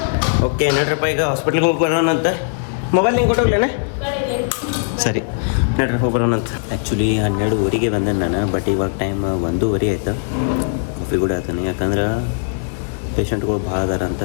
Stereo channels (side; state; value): right; silent; digital silence